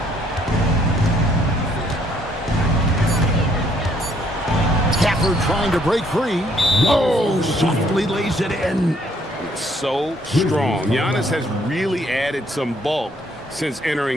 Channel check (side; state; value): both; normal; correlation 0.67